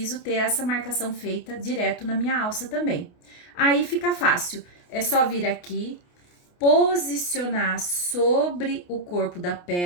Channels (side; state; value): right; late; 28 ms